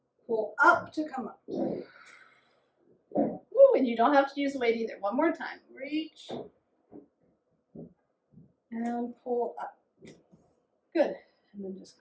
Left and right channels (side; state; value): both; identical; correlation 1.00